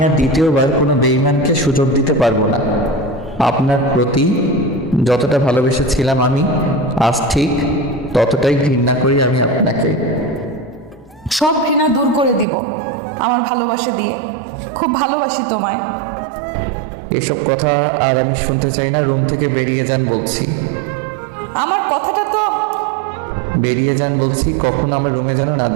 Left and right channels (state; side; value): drops out; left; at 12.5 s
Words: আর দ্বিতীয়বার কোনো বেঈমানকে সুযোগ দিতে পারবো না। আপনার প্রতি যতটা ভালোবেসেছিলাম আমি, আজ ঠিক ততটাই ঘৃণা করি আমি আপনাকে। সব ঘৃণা দূর করে দিব আমার ভালোবাসা দিয়ে। খুব ভালোবাসি তোমায়। এসব কথা আর আমি শুনতে চাই না। রুম থেকে বেরিয়ে যান বলছি। আমার কথাটা তো বেরিয়ে যান বলছি, কখনো আমার রুমে যেন না